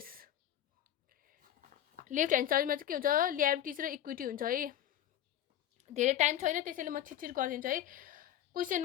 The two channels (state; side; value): quieter; right; 11.5 dB